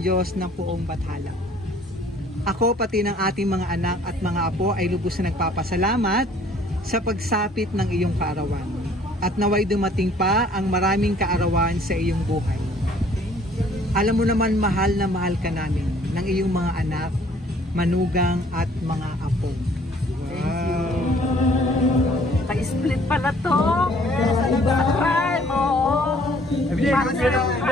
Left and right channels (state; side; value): normal; both; correlation 0.58